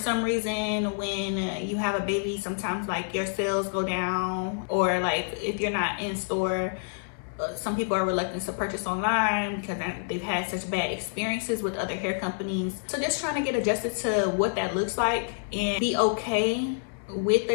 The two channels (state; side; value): silent; right; 58 dB below the other